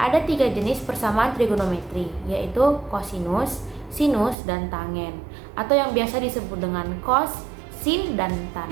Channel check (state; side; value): drops out; left; at 4.4 s